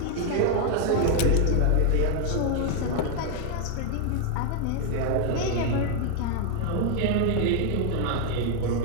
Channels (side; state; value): both; different; correlation 0.00